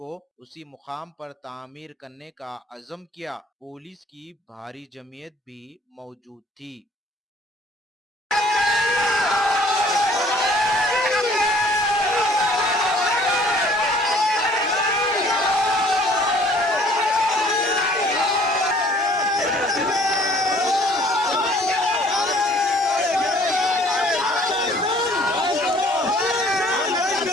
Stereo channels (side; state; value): both; normal; correlation 0.56